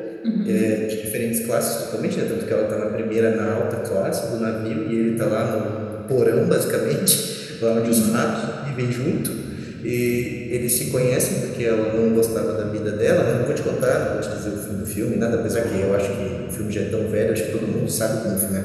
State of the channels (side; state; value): both; identical; correlation 1.00